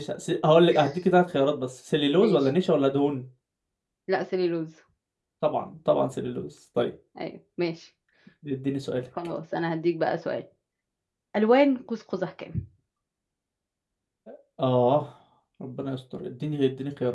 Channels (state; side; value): identical; both; correlation 1.00